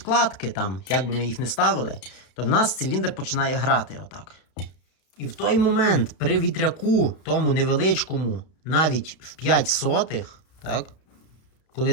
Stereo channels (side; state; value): right; late; 32 ms